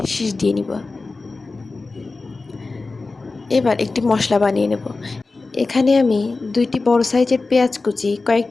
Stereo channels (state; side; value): quieter; right; 3.7 dB